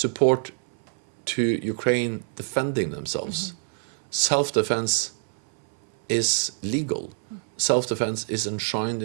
to Ukraine defending themselves. Self-defense is legal. Self-defense is enshrined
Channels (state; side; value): silent; left; 61 dB below the other